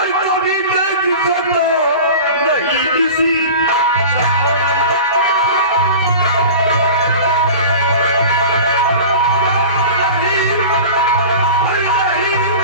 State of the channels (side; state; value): both; inverted; correlation -0.36